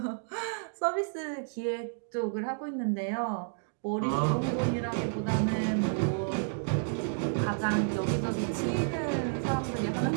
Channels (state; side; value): silent; left; digital silence